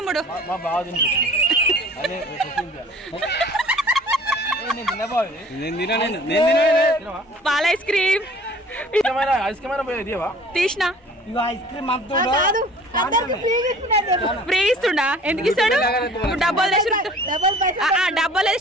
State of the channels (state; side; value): normal; both; correlation 0.49